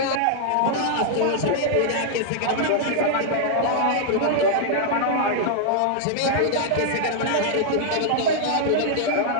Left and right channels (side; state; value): both; different; correlation -0.01